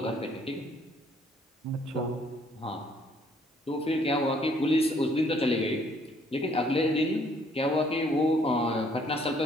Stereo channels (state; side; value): normal; both; correlation 0.64